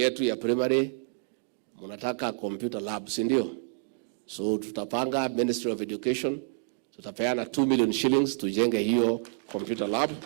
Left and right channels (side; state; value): left; silent; digital silence